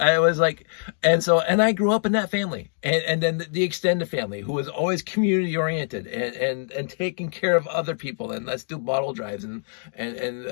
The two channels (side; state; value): right; silent; digital silence